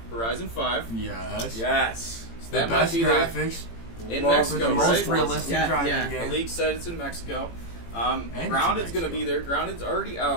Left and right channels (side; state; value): right; late; 18 ms